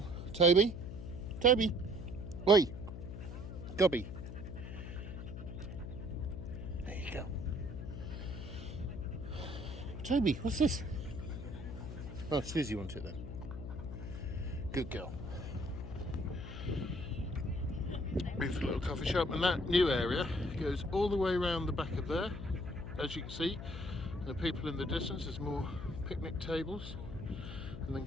Toby? Toby? Oi! Gobby. There you go. Toby, what's this? Oh, Suzi wants it then. Good girl. Beautiful little coffee shop, and that new area goes all the way around the back of there, as you can see. And the people in the distance, there's more picnic tables, and then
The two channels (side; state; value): left; noise; hum, 8 dB below the sound